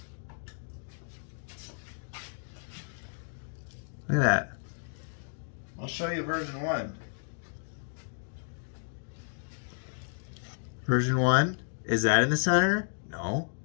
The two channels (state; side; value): silent; right; digital silence